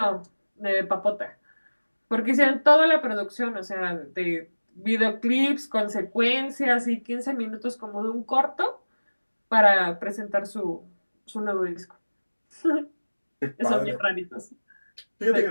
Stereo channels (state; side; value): inverted; both; correlation -1.00